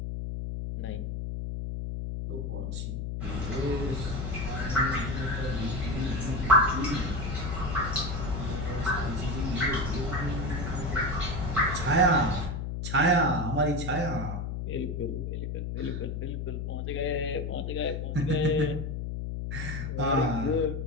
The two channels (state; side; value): noise; left; hum, 3 dB below the sound